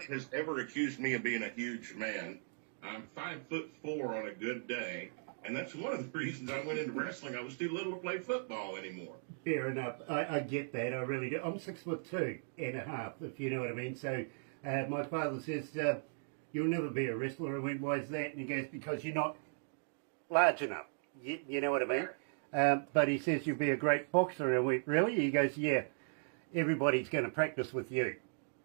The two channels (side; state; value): left; silent; digital silence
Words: has ever accused me of being a huge man. I'm 5'4" on a good day, and that's one of the reasons I went into wrestling. I was too little to play football anymore. Fair enough. I get that. I really do. I'm 6'2.5", if you know what I mean. So my father says, you'll never be a wrestler. I went, why is that? And he goes, because you're not large enough. You know what I mean? But he says, you'll be a great boxer. And I went, really? He goes, yeah. Everybody's going to practice with you.